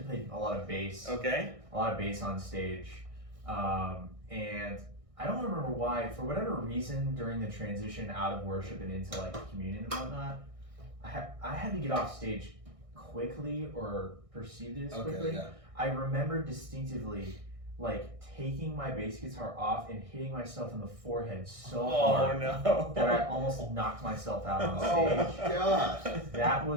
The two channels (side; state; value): left; late; 1.6 ms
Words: played a lot of bass. Okay. A lot of bass on stage, and I don't remember why. For whatever reason, during the transition out of worship and into like communion and whatnot, I had to get off stage quickly or perceived it as quickly. Okay, yeah. I remember distinctly like taking my bass guitar off and hitting myself in the forehead so Oh hard no. that I almost knocked myself out on Oh stage. gosh. That